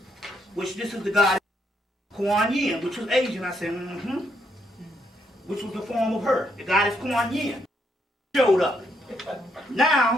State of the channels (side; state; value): both; normal; correlation 0.75